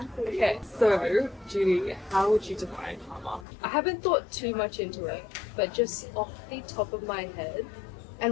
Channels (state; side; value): drops out; right; at 3.5 s